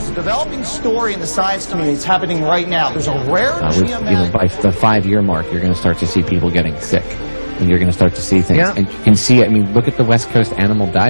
a developing story in the science community. It's happening right now. There's a rare by the 5-year mark, you're going to start to see people getting sick. And you're going to start to see things. Yeah. And you can see it. I mean, look at the West Coast animal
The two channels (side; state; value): both; inverted; correlation -1.00